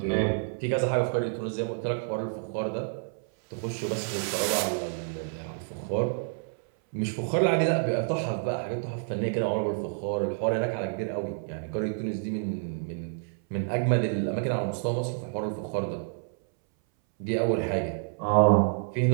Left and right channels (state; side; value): silent; left; 59 dB below the other